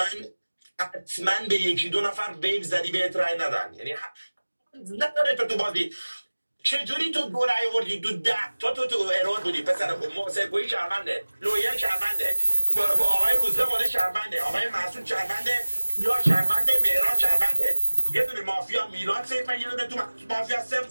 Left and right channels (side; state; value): both; inverted; correlation -1.00